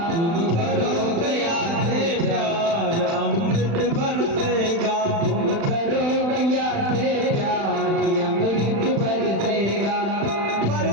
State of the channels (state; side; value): late; left; 36 ms